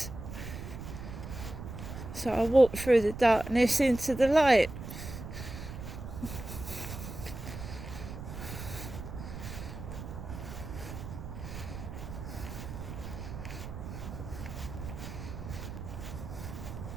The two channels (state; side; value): noise; right; rumble, 9 dB below the sound